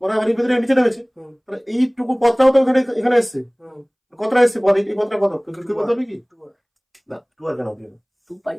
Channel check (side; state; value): both; identical; correlation 1.00